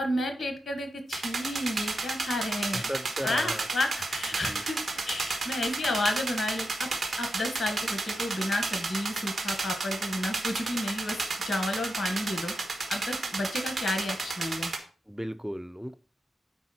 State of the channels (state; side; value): normal; both; correlation 0.87